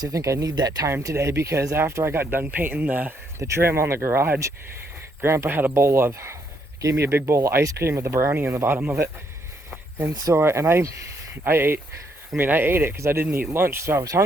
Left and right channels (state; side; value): normal; both; correlation 0.73